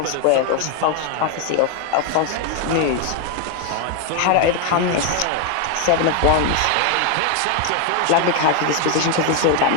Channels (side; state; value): both; different; correlation 0.01